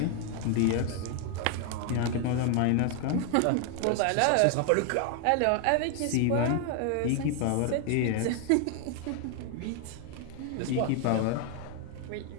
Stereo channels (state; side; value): different; both; correlation 0.00